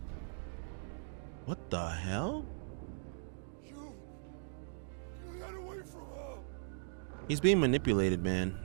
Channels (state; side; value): silent; left; digital silence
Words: What the hell? He's being manipulated,